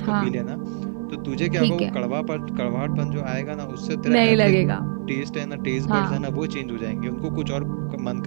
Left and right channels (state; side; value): silent; left; digital silence